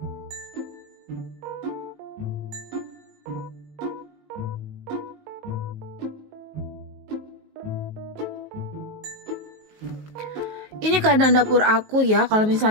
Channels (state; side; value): late; left; 19 ms